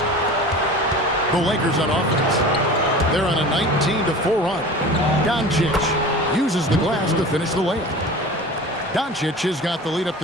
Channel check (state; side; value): normal; both; correlation 0.37